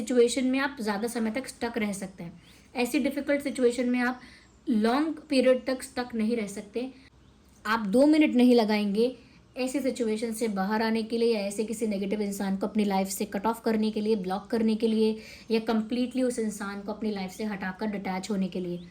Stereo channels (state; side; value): identical; both; correlation 1.00